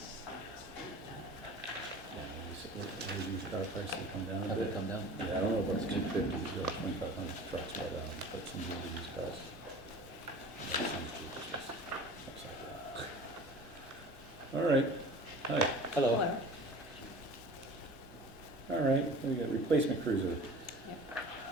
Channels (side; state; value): both; normal; correlation 0.41